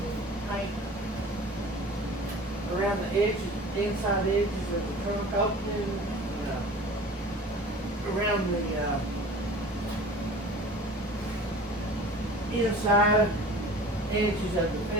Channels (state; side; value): normal; both; correlation 0.42